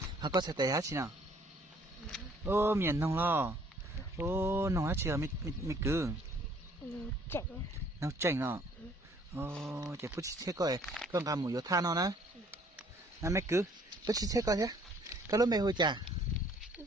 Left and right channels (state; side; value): normal; both; correlation 0.60